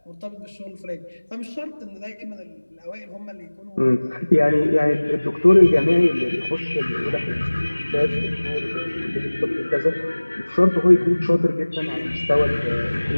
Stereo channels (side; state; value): both; inverted; correlation -1.00